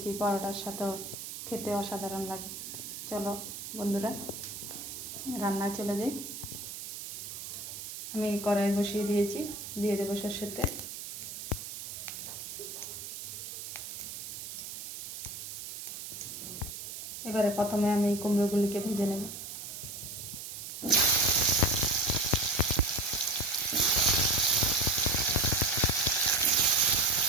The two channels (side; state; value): right; noise; hiss, 9 dB below the sound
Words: পরোটার সাথেও খেতে অসাধারণ লাগে। চলো বন্ধুরা রান্নায় চলে যাই। আমি কড়াই বসিয়ে দিয়েছি, দিয়ে দেবো সরষের তেল। এবারে প্রথমে আমি কুমড়োগুলিকে ভেজে নেব।